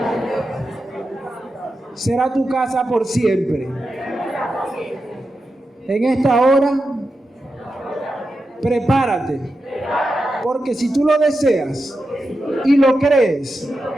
Será tu casa por siempre. En esta hora, prepárate, porque si tú lo deseas y lo crees,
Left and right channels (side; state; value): both; normal; correlation 0.89